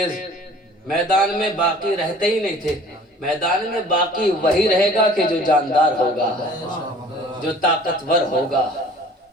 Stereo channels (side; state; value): both; normal; correlation 0.49